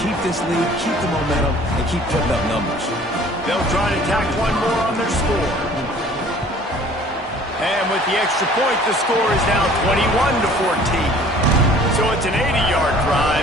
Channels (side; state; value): both; normal; correlation 0.51